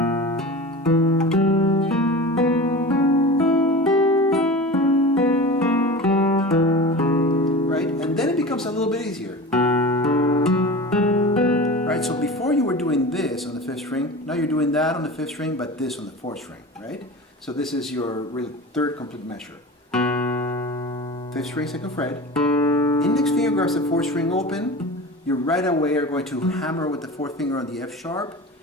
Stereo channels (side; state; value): both; normal; correlation 0.33